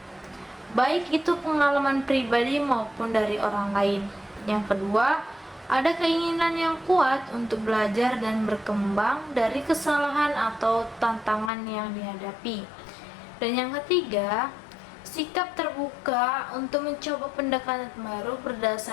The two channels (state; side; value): drops out; right; at 11.5 s